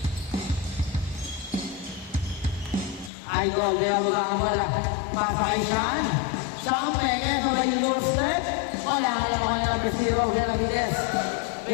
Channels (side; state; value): right; drops out; at 3.1 s